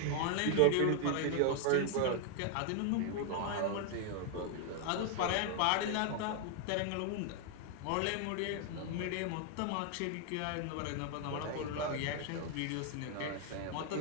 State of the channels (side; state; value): both; different; correlation 0.00